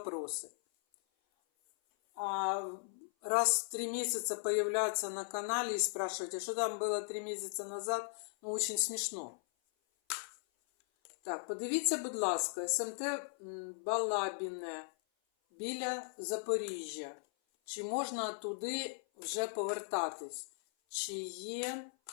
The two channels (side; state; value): right; silent; 53 dB below the other